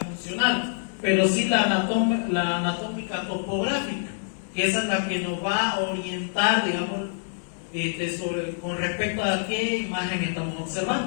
pero sí la anatómica topográfica, que esa es la que nos va a orientar, digamos, con respecto a qué imagen estamos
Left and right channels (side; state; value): right; silent; digital silence